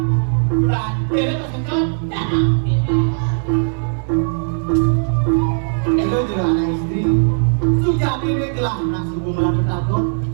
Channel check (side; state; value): left; silent; digital silence